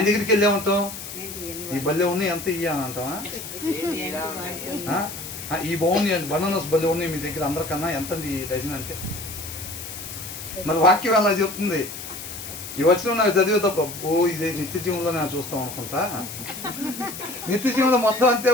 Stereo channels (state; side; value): noise; left; hiss, 10 dB below the sound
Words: దగ్గరికి వెళ్ళేమంటాం, ఈ బల్లె ఉన్నాయి ఎంత ఇయ్య అని అంటామా? ఈ బాగున్నాయి బనానాస్ బల్లె ఉన్నాయి మీ దగ్గర అందరికన్నా ఎంత ఈ డజన్ అంటే. మరి వాక్యం అలా చెప్తుంది. ఈ వచ్చిన నాకు చదివే తప్ప ఇదే నిత్య జీవంలో నేను చూస్తాం అనుకుంటా. నిత్య జీవంలో మొత్తం అంతే